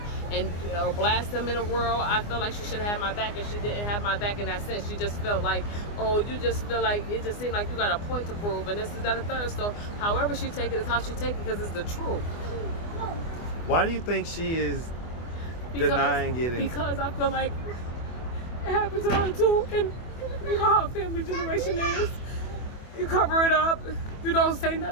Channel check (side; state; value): right; late; 24 ms